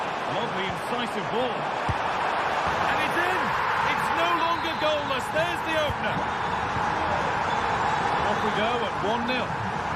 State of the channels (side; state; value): both; identical; correlation 1.00